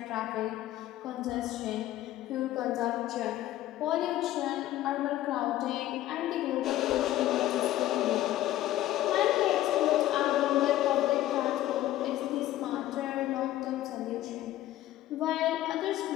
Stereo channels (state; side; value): quieter; right; 14.2 dB